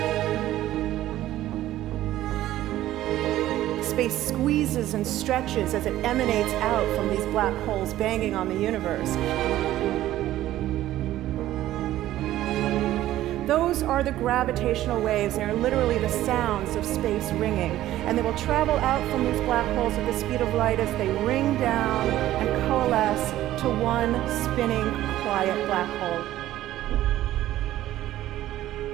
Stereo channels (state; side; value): quieter; left; 14.1 dB